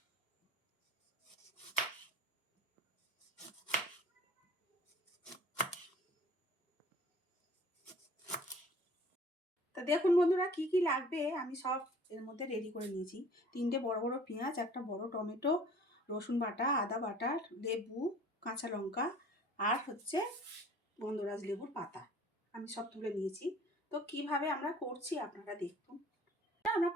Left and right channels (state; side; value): normal; both; correlation 0.49